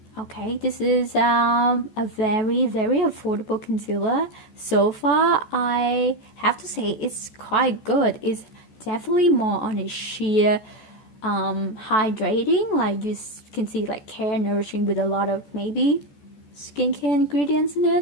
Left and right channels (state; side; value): late; right; 14 ms